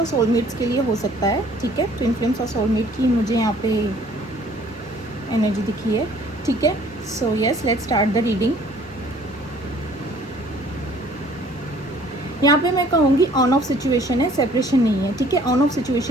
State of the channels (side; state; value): both; normal; correlation 0.56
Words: सोलमेट्स के लिए हो सकता है, ठीक है। ट्विन फ्लेम्स और सोलमेट की मुझे यहाँ पे एनर्जी दिखी है, ठीक है। So yes, let's start the reading. यहाँ पे मैं कहूँगी ऑन ऑफ सिचुएशन है, सेपरेशन नहीं है, ठीक है। ऑन ऑफ